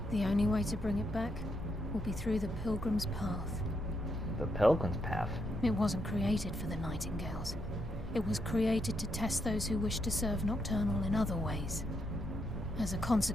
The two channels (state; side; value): normal; both; correlation 0.80